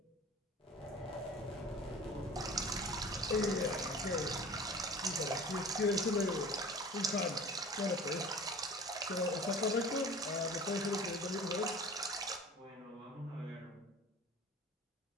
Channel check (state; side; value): normal; both; correlation 0.41